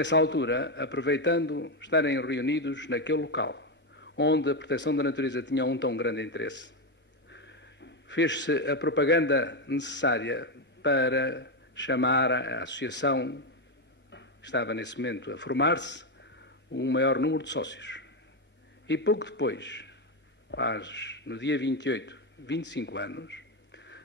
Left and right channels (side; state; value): both; normal; correlation 0.08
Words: altura, aproveitando estarem reunidos naquele local, onde a proteção da natureza tinha um tão grande interesse, fez-se a propaganda necessária para chamar a associação, que estava nesse momento a formar-se, um maior número de sócios. E pouco depois, no dia 28, 25 anos,